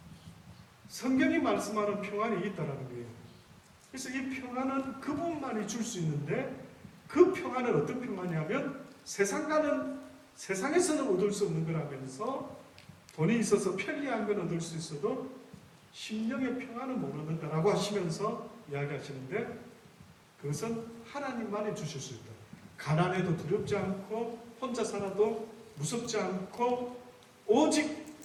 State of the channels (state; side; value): identical; both; correlation 1.00